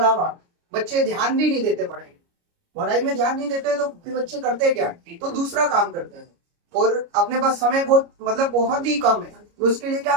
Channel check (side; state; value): left; late; 29 ms